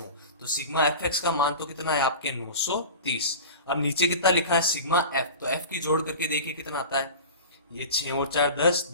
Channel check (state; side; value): inverted; both; correlation -0.34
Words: तो सिग्मा एफ एक्स का मान तो कितना है आपके? 930। अब नीचे कितना लिखा है? Sigma F. तो एफ की जोड़ करके देखिए कितना आता है? ये 6 और 4 10,